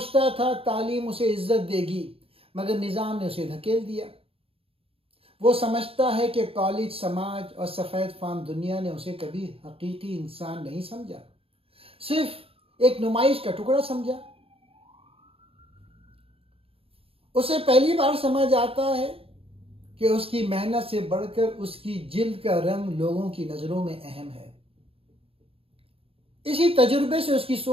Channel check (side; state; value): left; late; 0.27 ms